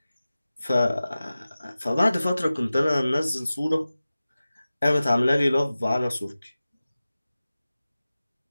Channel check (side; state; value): both; inverted; correlation -0.96